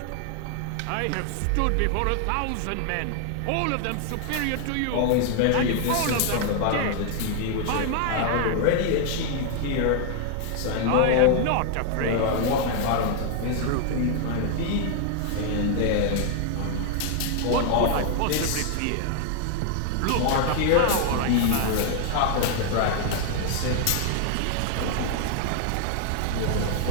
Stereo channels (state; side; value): different; both; correlation 0.00